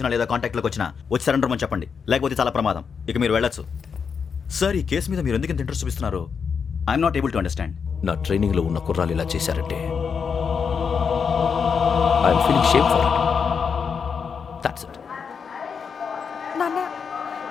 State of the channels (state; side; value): quieter; right; 6.2 dB